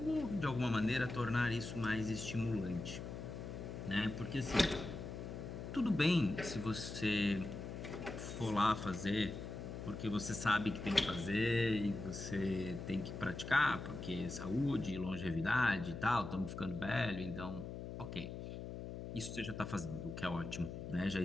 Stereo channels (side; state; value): left; noise; hum, 8 dB below the sound